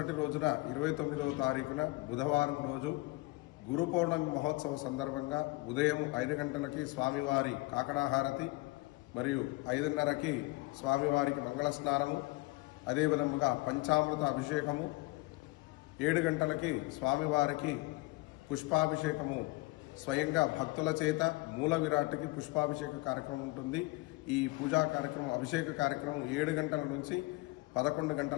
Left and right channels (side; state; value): right; quieter; 22.6 dB